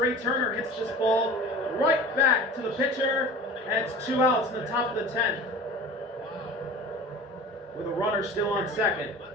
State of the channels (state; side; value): normal; both; correlation 0.39